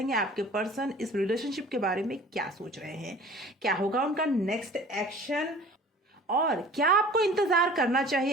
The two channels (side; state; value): both; normal; correlation 0.46